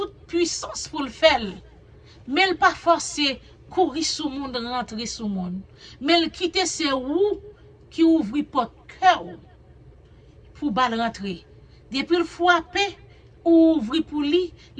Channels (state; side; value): identical; both; correlation 1.00